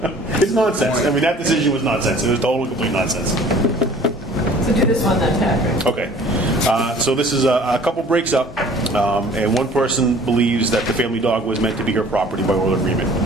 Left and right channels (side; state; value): both; normal; correlation 0.50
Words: It's nonsense. I mean, that decision was nonsense. It was total complete nonsense. So do this one then, Patrick. Okay. So this is a couple breaks up, and one person believes that the family dog was meant to be her property by oral agreement.